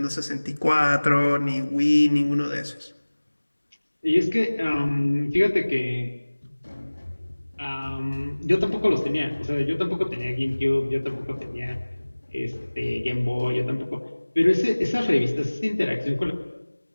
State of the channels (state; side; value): inverted; both; correlation -1.00